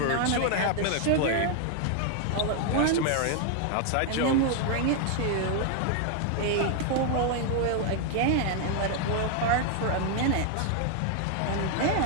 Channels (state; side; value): different; both; correlation 0.00